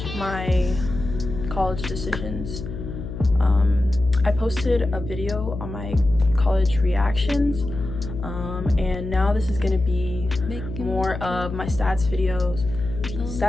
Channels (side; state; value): left; noise; hum, 8 dB below the sound